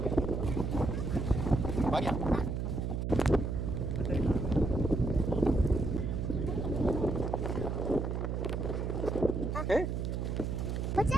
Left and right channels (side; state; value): right; noise; hum, 1 dB below the sound